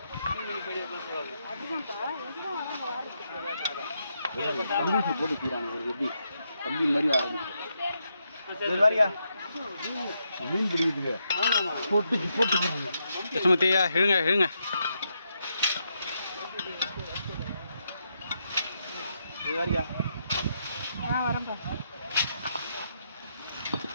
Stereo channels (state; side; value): inverted; both; correlation -0.81